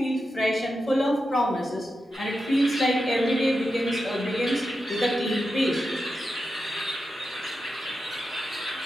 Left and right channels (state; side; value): normal; both; correlation 0.89